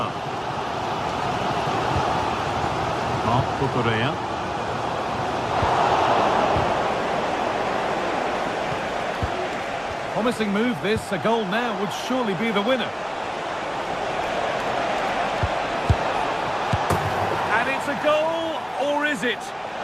Mark Cucurella. Promising move this. A goal now would surely be the winner. And it's a goal, or is it?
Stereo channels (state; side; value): identical; both; correlation 1.00